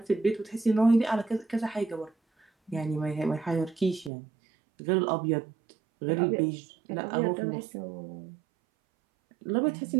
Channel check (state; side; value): drops out; left; at 4.1 s